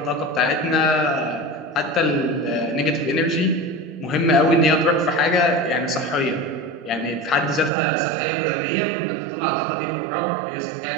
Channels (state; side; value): drops out; left; at 7.7 s